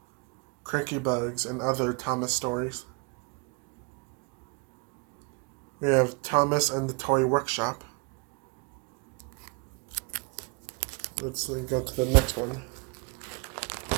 Cranky Bugs and Other Thomas Stories. We have Thomas and the Toy Workshop. Let's go to the next one.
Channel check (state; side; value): quieter; left; 31.7 dB